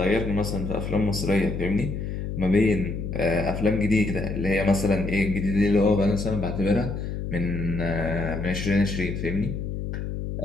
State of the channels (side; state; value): left; noise; hum, 4 dB below the sound